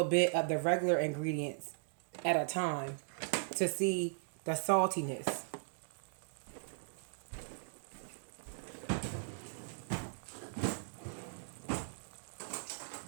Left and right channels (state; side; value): silent; left; digital silence